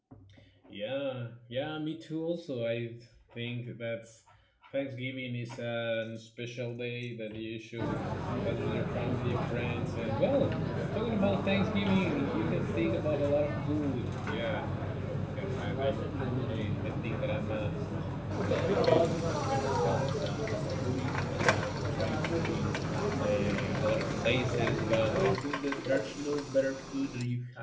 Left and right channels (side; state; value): both; identical; correlation 1.00